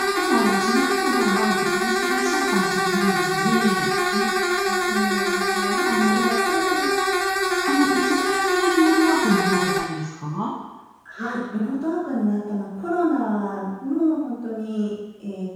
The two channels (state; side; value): identical; both; correlation 1.00